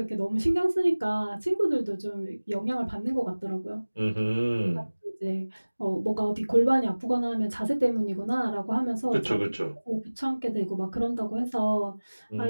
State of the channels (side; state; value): both; inverted; correlation -1.00